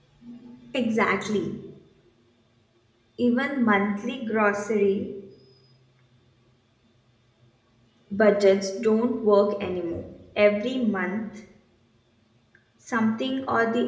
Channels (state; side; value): identical; both; correlation 1.00